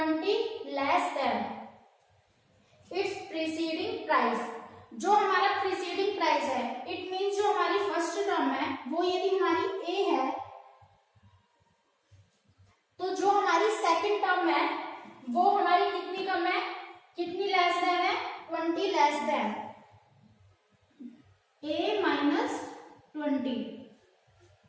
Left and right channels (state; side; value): identical; both; correlation 1.00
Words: less than its preceding price. जो हमारा preceding price है, it means जो हमारी फर्स्ट टर्म है वो यदि हमारी A है, तो जो हमारी सेकंड टर्म है वो हमारी कितनी कम है, कितनी लेस देन है, 20 लेस देन A माइनस 20.